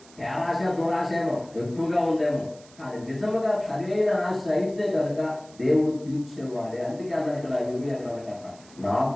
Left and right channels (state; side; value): noise; right; hiss, 24 dB below the sound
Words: పేరాశ, దురాశ ఏమో ఎక్కువగా ఉందేమో, కానీ నిజముగా సరైన ఆశ అయితే కనుక దేవుడు తీర్చేవాడే. అందుకే అన్న ఇక్కడ ఇవి అన్నాడు కదా,